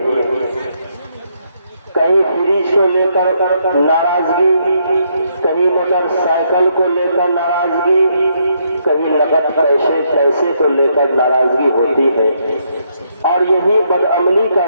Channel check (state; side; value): inverted; both; correlation -0.75